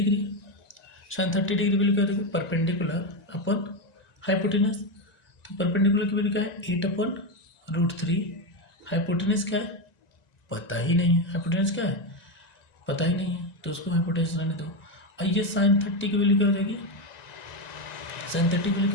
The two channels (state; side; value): late; right; 1.9 ms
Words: Sine 30 degree value क्या होती है? Perpendicular upon hypotenuse. तो परपेंडिकुलर की वैल्यू क्या है? 8/√3। हाइपोटेनस क्या है? पता ही नहीं है। हाइपोटेनस क्या है? पता ही नहीं है, तो उसको हाइपोटेनस रहने दो। और ये साइन 30 की वैल्यू क्या हो जाएगी? साइन 30 की वैल्यू